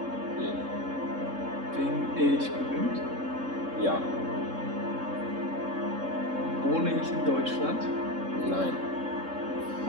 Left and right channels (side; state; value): left; late; 3.7 ms